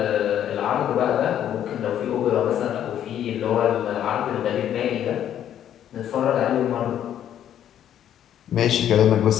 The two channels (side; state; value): right; quieter; 10.4 dB